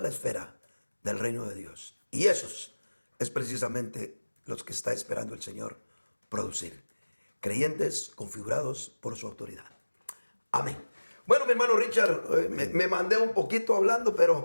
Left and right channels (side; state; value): both; inverted; correlation -1.00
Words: la esfera del reino de Dios. Y esos es precisamente los que está esperando el Señor producir. Creyentes configurados por su autoridad. Amén. Bueno, mi hermano Richard, me mandé un poquito hablando,